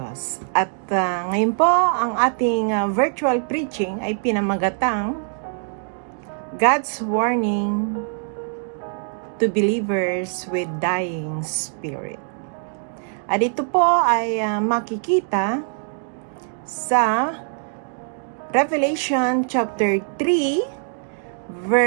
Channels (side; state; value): left; silent; digital silence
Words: At ngayon po, ang ating virtual preaching ay pinamagatang God's Warning to Believers with Dying Spirit. At ito po ay makikita sa Revelation chapter 3